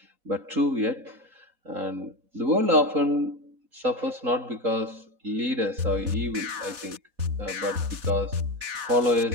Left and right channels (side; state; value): left; late; 4.1 ms